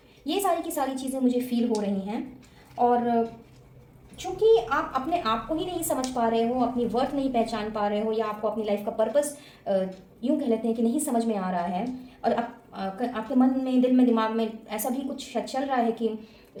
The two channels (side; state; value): both; identical; correlation 1.00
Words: ये सारी की सारी चीज़ें मुझे फील हो रही हैं। और चूँकि आप अपने आप को ही नहीं समझ पा रहे हो, अपनी वर्थ नहीं पहचान पा रहे हो, या आपको अपनी लाइफ का पर्पस यूँ कह लेते हैं कि नहीं समझ में आ रहा है, और आपके मन में, दिल में, दिमाग में ऐसा भी कुछ चल रहा है कि